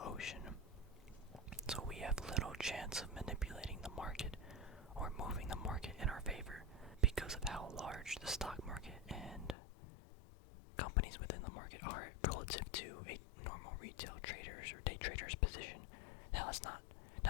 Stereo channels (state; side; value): drops out; right; at 9.6 s